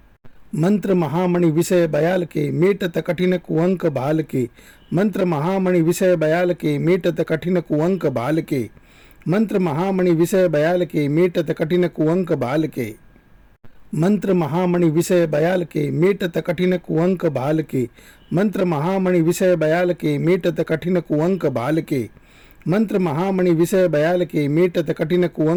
मंत्र महामणि विषय बयाल के मीटत कठिन कुअंक बाल के। मंत्र महामणि विषय बयाल के मीटत कठिन कुअंक बाल के। मंत्र महामणि विषय बयाल के मीटत कठिन कुअंक बाल के। मंत्र महामणि विषय बयाल के मेटत कठिन कुअंक भाल के। मंत्र महामणि विषय बयाल के मेटत कठिन कुअंक भाल के। मंत्र महामणि विषय बयाल के मेटत कठिन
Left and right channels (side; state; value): both; identical; correlation 1.00